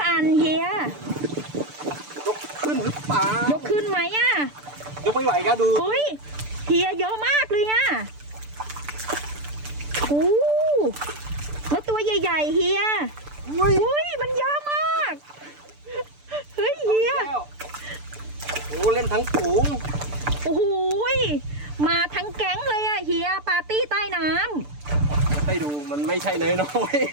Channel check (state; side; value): late; left; 6.8 ms